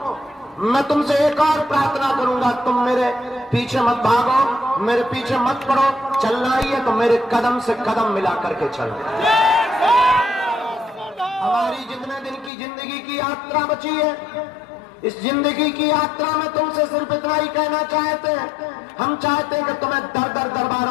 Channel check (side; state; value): right; drops out; at 12.5 s